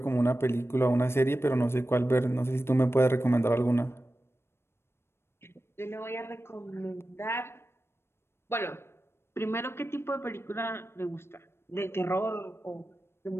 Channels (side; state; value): right; late; 0.12 ms